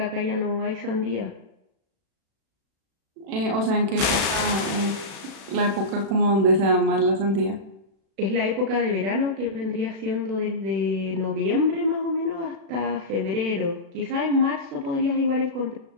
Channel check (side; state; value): left; late; 36 ms